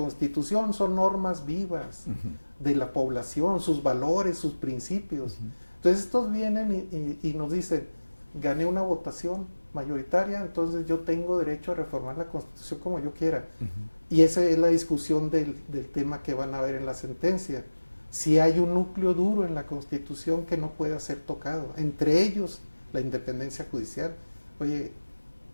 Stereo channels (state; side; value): inverted; both; correlation -1.00